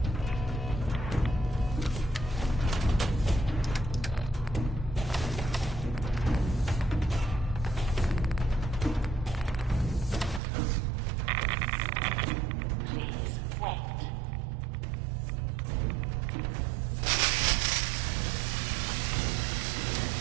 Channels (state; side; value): drops out; left; at 10.4 s